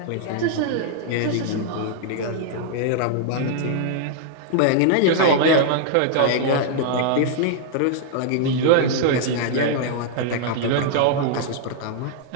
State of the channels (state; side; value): different; both; correlation -0.01